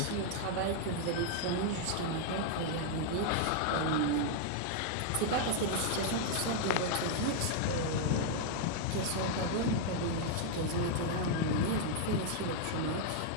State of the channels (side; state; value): both; different; correlation 0.00